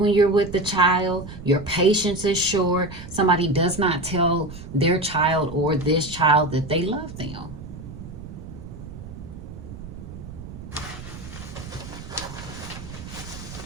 you're with the child. Your patience is short. Somebody does not tell their child or this child that they love them.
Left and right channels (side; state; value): right; noise; rumble, 13 dB below the sound